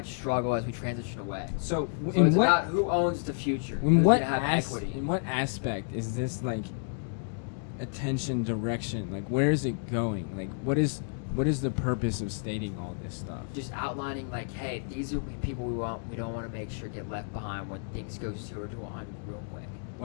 struggle as we transition away. So it's about who owns the future. Who's going to have equity. In what aspect is this like attention direction? Like where is it going? Like what is the purpose of stating all this stuff? Just outlining like, hey, these are people we don't want to make sure get left behind when things go 0 to 100 real quick.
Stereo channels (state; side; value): silent; right; digital silence